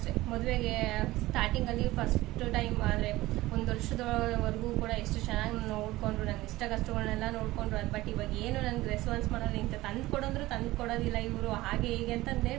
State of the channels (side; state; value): left; quieter; 18.1 dB